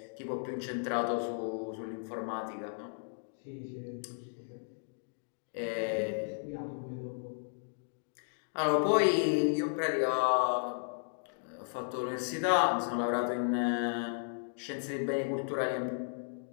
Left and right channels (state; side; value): silent; right; digital silence